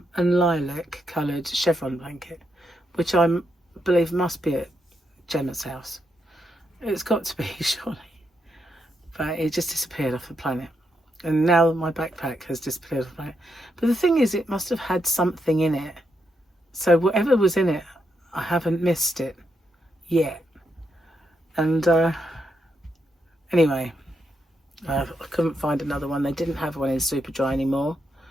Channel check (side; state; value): both; normal; correlation 0.81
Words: lilac coloured chevron blanket, which I believe must be at Gemma's house. It's got to be, surely. But it just disappeared off the planet. And now my backpack has disappeared off the planet. But the thing is, it must have had something in it. So whatever was in it, I haven't missed it yet. And anyway, I couldn't find another one. They didn't have one in Superdry anymore.